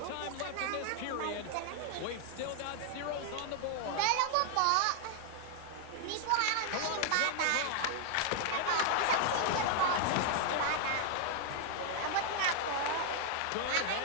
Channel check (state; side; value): different; both; correlation 0.00